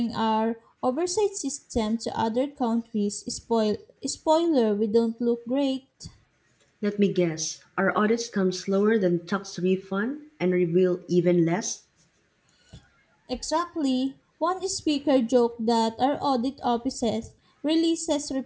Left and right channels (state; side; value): identical; both; correlation 1.00